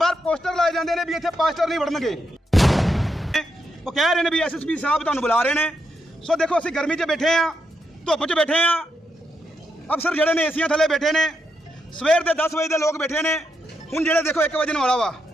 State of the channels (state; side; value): normal; both; correlation 0.81